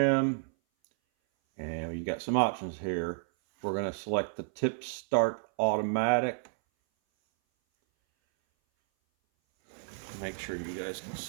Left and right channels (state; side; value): silent; left; 57 dB below the other